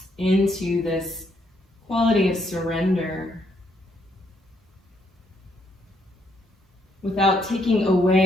into this quality of surrender without taking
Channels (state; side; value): normal; both; correlation 0.73